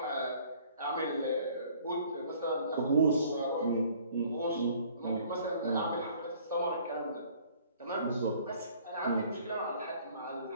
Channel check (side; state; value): both; inverted; correlation -0.55